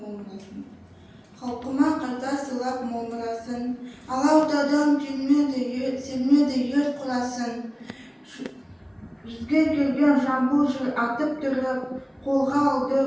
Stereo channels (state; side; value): identical; both; correlation 1.00